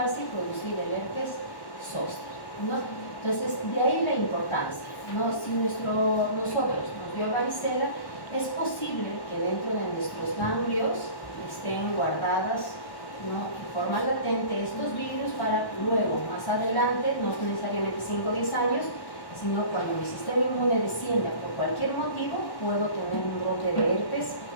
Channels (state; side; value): late; right; 1.1 ms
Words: y producir el herpes zóster, ¿no? Entonces, de ahí la importancia, ¿no? Si nosotros nos dio varicela, es posible que dentro de nuestros ganglios estén guardadas, ¿no?, en forma latente estos virus para luego, más adelante, no necesariamente 5 o 10 años, sino cuando mi sistema inmune descienda por cualquier motivo, puedo tener un brote de herpes